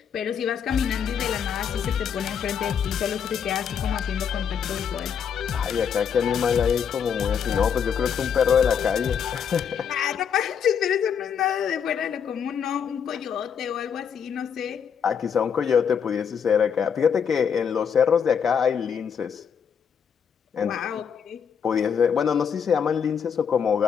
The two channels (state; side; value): quieter; right; 7.4 dB